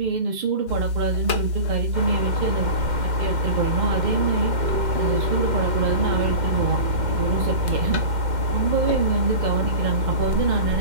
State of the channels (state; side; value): late; left; 2.1 ms